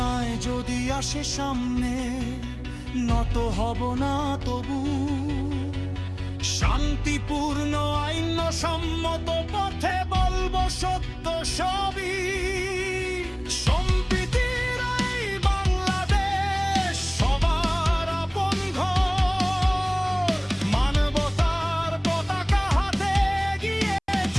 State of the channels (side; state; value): both; identical; correlation 1.00